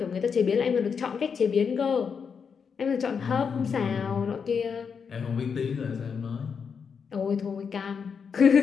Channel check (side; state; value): right; quieter; 6.3 dB